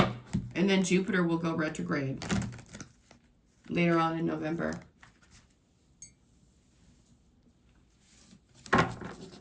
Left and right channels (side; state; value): both; identical; correlation 1.00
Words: And then Jupiter will go retrograde later on in November.